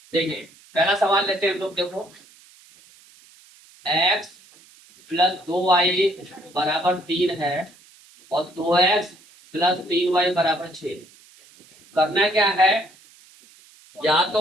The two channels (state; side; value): noise; right; hiss, 26 dB below the sound